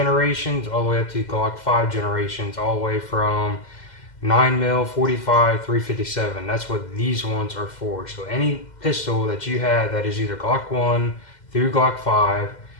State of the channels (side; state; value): right; late; 2.1 ms